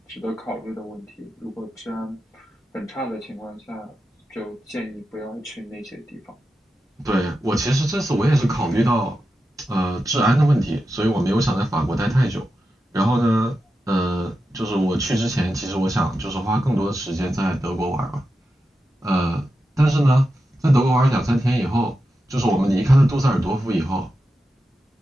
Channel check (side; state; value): both; normal; correlation 0.90